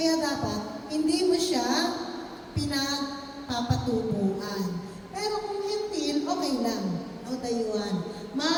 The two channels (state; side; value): identical; both; correlation 1.00